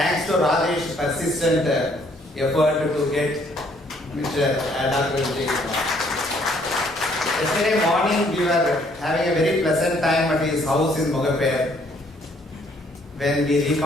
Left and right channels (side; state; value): both; normal; correlation 0.65